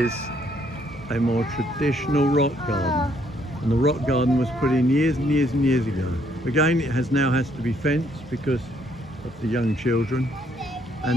a more traditional rock garden, and the rock garden was put in years and years and years ago. Again, it now has to be fenced because of the young children,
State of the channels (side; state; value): both; normal; correlation 0.69